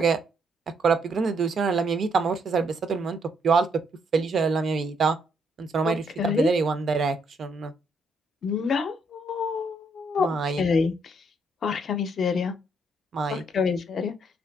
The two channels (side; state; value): both; normal; correlation 0.73